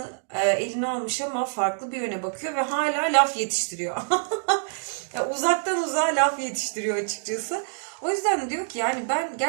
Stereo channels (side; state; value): left; silent; digital silence